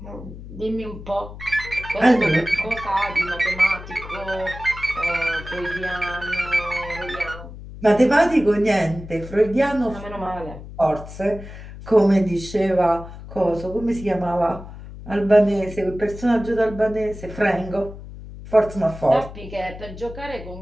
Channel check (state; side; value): noise; left; hum, 14 dB below the sound